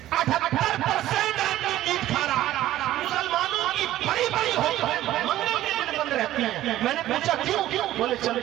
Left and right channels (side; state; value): left; quieter; 14.1 dB